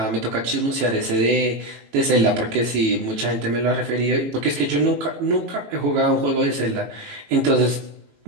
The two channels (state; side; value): late; left; 18 ms